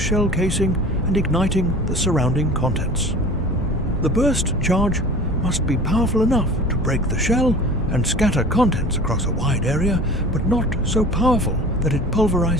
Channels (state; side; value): normal; both; correlation 0.40